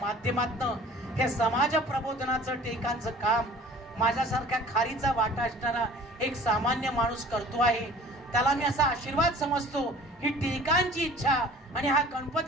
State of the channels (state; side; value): normal; both; correlation 0.47